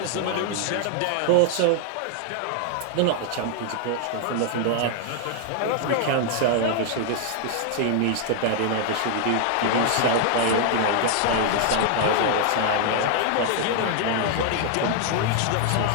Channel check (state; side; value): different; both; correlation 0.00